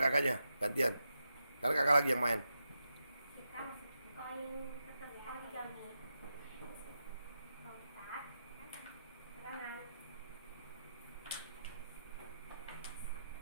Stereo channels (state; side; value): inverted; both; correlation -0.88